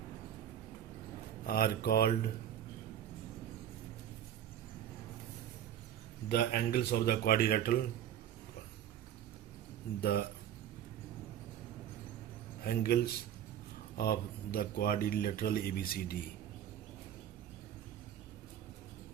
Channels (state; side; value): quieter; left; 10.4 dB